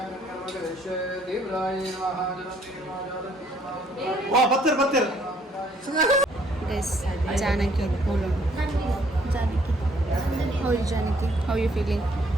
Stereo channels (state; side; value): normal; both; correlation 0.64